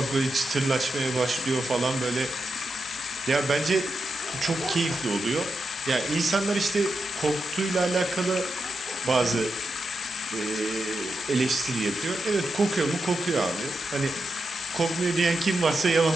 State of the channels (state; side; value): normal; both; correlation 0.86